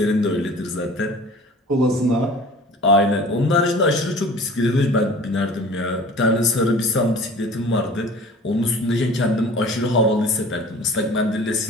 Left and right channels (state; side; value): normal; both; correlation 0.44